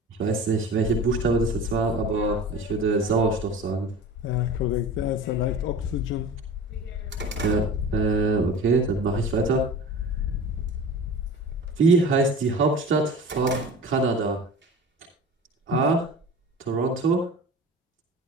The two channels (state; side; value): normal; both; correlation 0.37